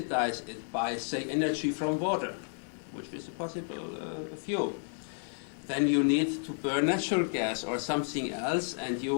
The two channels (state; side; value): silent; right; 57 dB below the other